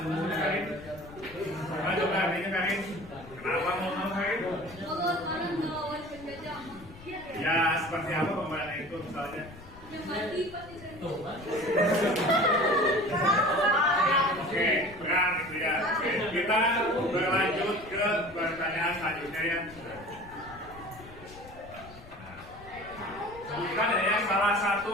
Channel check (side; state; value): left; noise; rumble, 19 dB below the sound